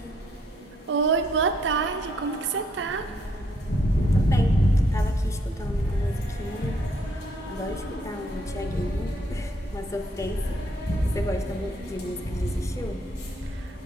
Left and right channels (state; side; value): normal; both; correlation 0.69